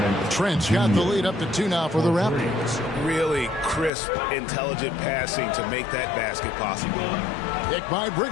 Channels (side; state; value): right; drops out; at 3.9 s